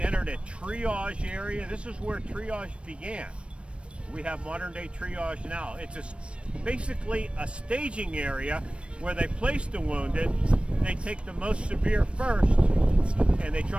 a triage area. This is where triage began. We have modern day triage now. It's basically a staging area where they place the wounded. They take the most severe first, and they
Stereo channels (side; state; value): left; late; 0.059 ms